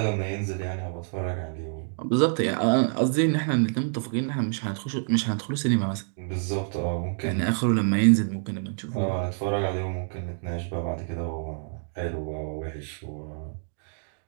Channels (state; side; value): silent; left; digital silence